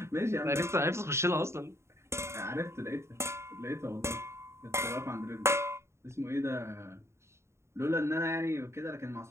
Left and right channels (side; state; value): left; late; 0.13 ms